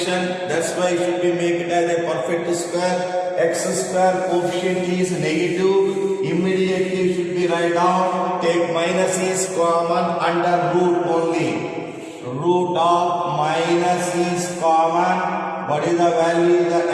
That's why it should be make it as a perfect square. X square coefficient is negative. Immediately should be write down. Take minus is common under root only. Root of minus is common. What is the value? The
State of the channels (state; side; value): identical; both; correlation 1.00